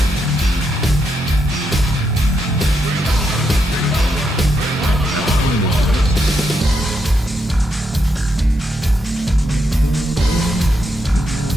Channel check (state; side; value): normal; both; correlation 0.81